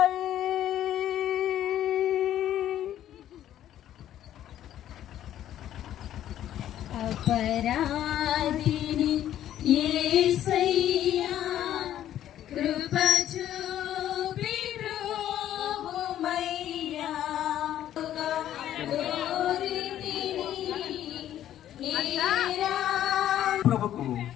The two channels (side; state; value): right; quieter; 11.7 dB